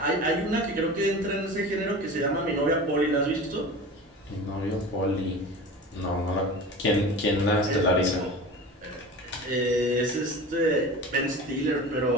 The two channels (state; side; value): normal; both; correlation 0.34